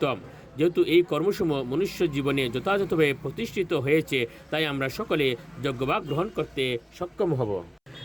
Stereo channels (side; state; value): both; identical; correlation 1.00